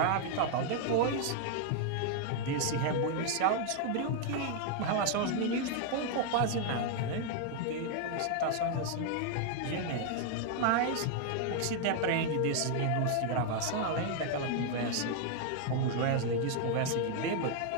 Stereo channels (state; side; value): different; both; correlation 0.00